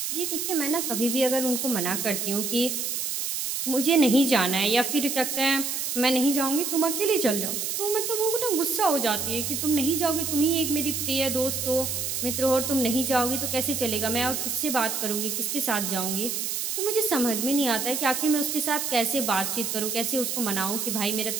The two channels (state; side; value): noise; right; hiss, 2 dB below the sound